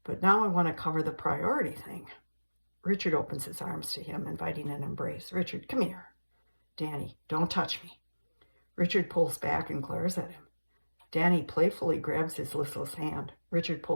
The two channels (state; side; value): inverted; both; correlation -1.00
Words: but now I want to cover the priority thing. Richard opens his arms to him, inviting an embrace. Richard, come here. Danny, don't touch me. Richard pulls back and glares at him. Danny playfully grabs his listless hand. Richard